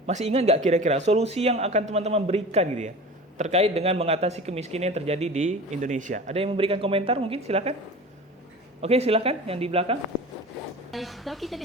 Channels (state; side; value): normal; both; correlation 0.36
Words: masih ingat nggak kira-kira solusi yang akan teman-teman berikan gitu ya, terkait dengan mengatasi kemiskinan yang terjadi di Indonesia? Ada yang memberikan komentar mungkin? Silakan. Oke, silakan yang di belakang. Kalau kita